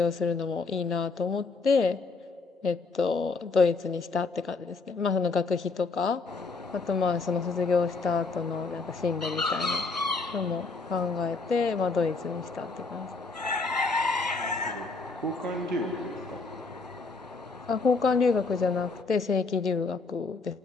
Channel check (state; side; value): quieter; right; 4.1 dB